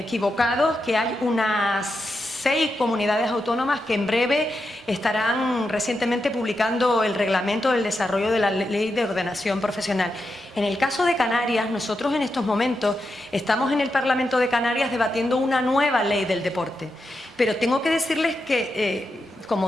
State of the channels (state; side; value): normal; both; correlation 0.87